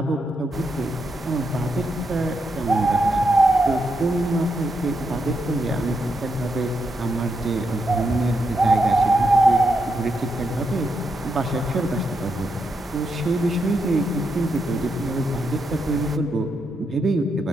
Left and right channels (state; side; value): normal; both; correlation 0.82